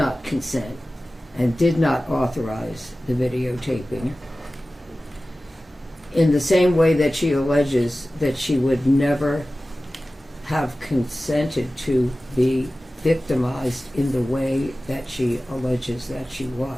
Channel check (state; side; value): normal; both; correlation 0.96